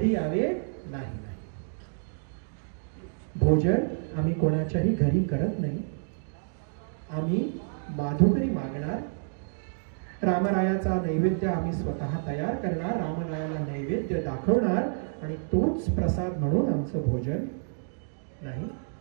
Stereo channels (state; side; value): silent; left; digital silence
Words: यावे. नाही, भोजन आम्ही कोणाच्याही घरी करत नाही. आम्ही माधुकरी मागणार, रामरायाचा नैवेद्य आम्ही स्वतः तयार करणार, रामरायाला नैवेद्य दाखवणार आणि तोच प्रसाद म्हणून आमचं भोजन. नाही,